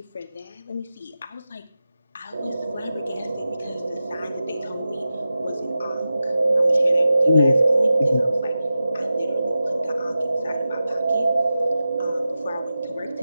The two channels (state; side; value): inverted; both; correlation -0.92